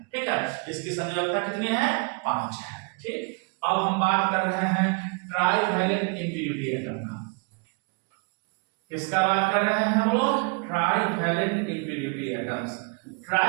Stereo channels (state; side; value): quieter; left; 35.1 dB